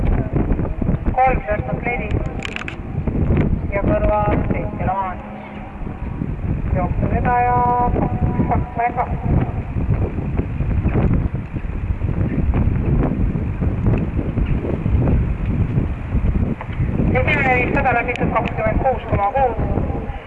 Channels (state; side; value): identical; both; correlation 1.00